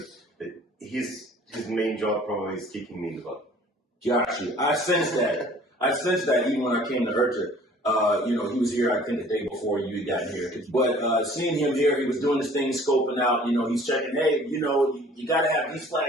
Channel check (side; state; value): both; normal; correlation 0.52